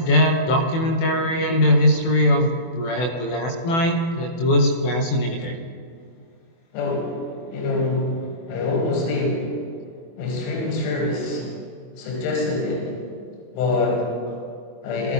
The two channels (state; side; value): late; right; 24 ms